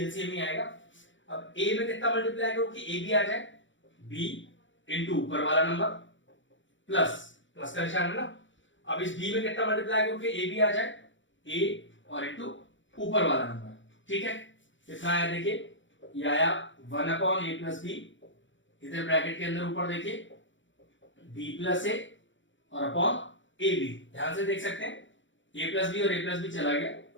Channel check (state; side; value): late; right; 0.55 ms